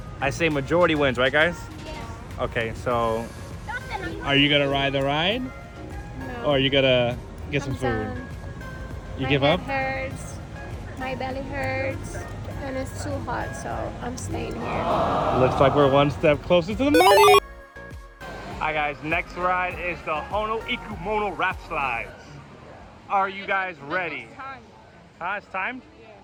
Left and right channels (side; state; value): both; identical; correlation 1.00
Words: I say majority wins, right guys? Yes. Okay, so are you gonna ride the ride? No. Or are you gonna get some food? You give up? My head hurts, my belly hurts, and it's too hot, so I'm staying here. Looks like we're one step closer to the money. Alright guys, next ride is the Hono Ikumono Rap Slides. Are you guys ready? It's time. It's time? Yeah.